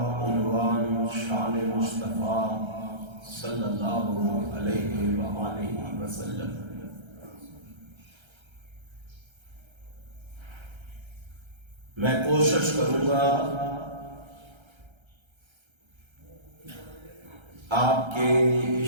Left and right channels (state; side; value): late; left; 1.3 ms